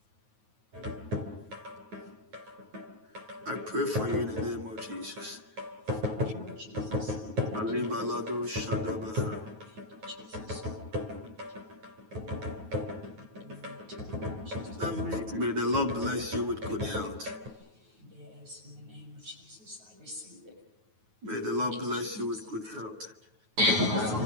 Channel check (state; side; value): late; left; 9.3 ms